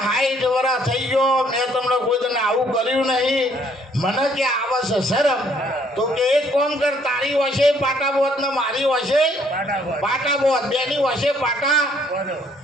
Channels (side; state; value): both; normal; correlation 0.64